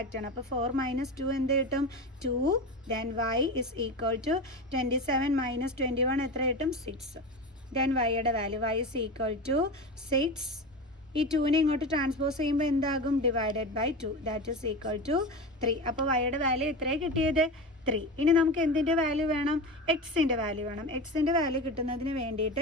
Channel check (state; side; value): normal; both; correlation 0.25